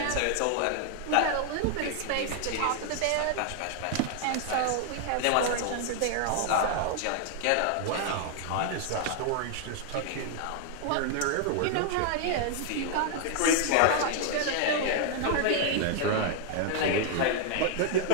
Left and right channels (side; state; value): both; different; correlation 0.00